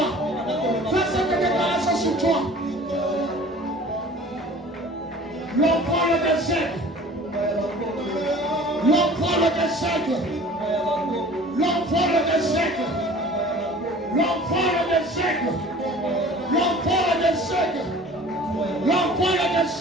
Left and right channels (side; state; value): both; normal; correlation 0.45